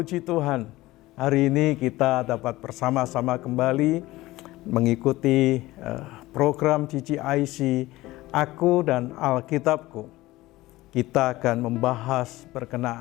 Tuhan. Hari ini kita dapat bersama-sama kembali mengikuti program GGIC Aku dan Alkitabku. Kita akan membahas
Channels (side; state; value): right; quieter; 18.3 dB